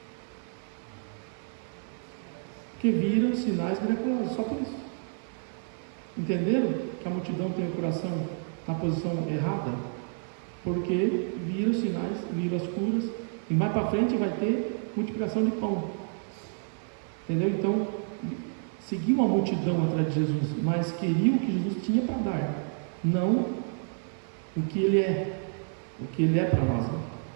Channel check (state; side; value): silent; left; 58 dB below the other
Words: Que viram sinais miraculosos, só por isso. Entenderam que a multidão tem o coração na posição errada? Porque viram sinais, viram as curas, e mais para frente vai ter multiplicação de pão. Entendeu? Então, seguiu a multidão atrás de Jesus, mas queriam o que Jesus tinha para dar, não o que ele é para nós.